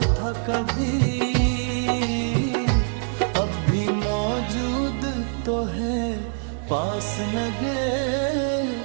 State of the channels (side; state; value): left; silent; digital silence